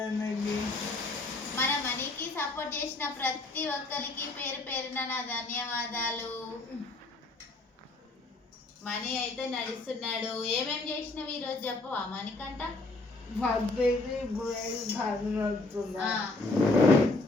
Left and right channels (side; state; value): right; quieter; 3.1 dB